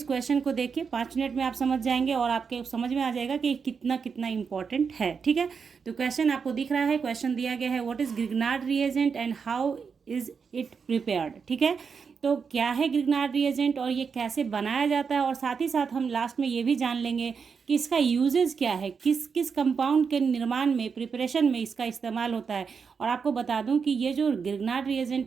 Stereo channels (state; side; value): quieter; left; 5.8 dB